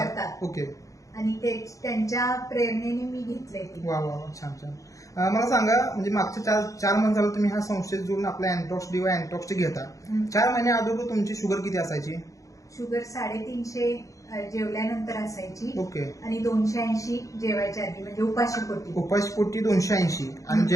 करतात. ओके. आणि त्यांच्या प्रेरणेने मी घेतलंय ते. वा वा वा, छान छान. मला सांगा, म्हणजे मागच्या चार महिने झालं तुम्ही ह्या संस्थेत जोडून आपल्या अँटॉक्स डी व अँटॉक्स टी घेता. 4 महिने अगोदर तुमची शुगर किती असायची? शुगर 350 जेवल्यानंतर असायची. ओके. आणि 280 जेवायच्या आधी, म्हणजे उपाशीपोटी. उपाशीपोटी 280 आणि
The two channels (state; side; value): late; right; 0.16 ms